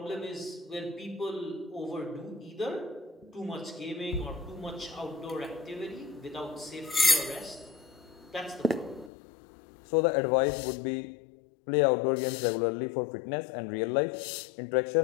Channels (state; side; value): drops out; right; at 9.1 s